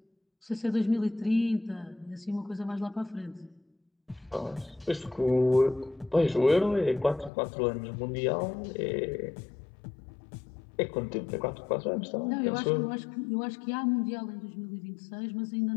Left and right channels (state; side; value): drops out; right; at 7.3 s